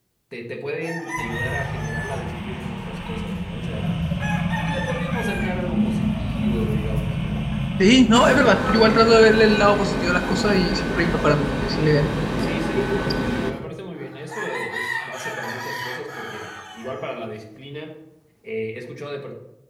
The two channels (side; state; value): both; identical; correlation 1.00